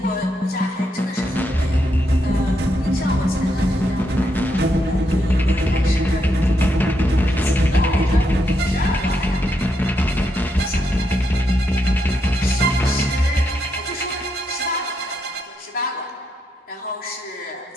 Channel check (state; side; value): normal; both; correlation 0.80